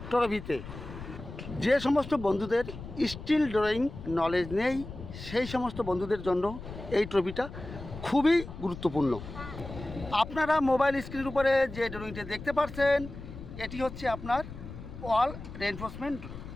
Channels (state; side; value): noise; left; rumble, 12 dB below the sound